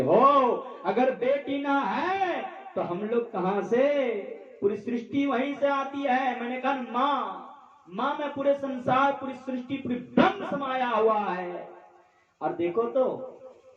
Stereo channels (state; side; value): identical; both; correlation 1.00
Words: हो, अगर बेटी ना है तो हम लोग कहां से? पूरी सृष्टि वहीं से आती है। मैंने कहा माँ में पूरे संसार, पूरी सृष्टि, पूरी ब्रह्म समाया हुआ है। और देखो तो